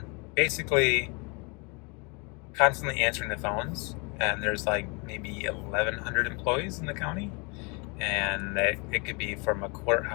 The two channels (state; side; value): quieter; right; 31.2 dB